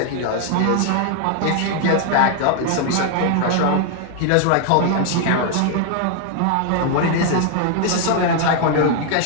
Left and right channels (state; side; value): different; both; correlation 0.00